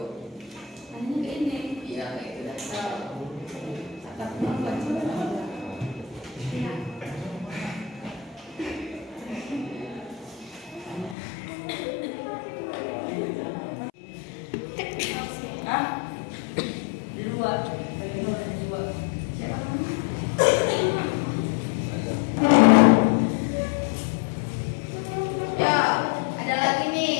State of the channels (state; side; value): drops out; right; at 11.2 s